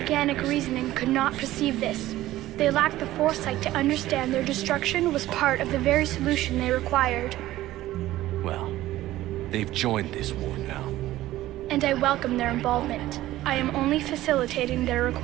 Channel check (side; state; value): left; quieter; 15.4 dB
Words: reasoning could not perceive this. They lacked the foresight to understand their destruction was part of the very solution they required. Well, they've joined this war now. And I welcome their involvement. I am only facilitating their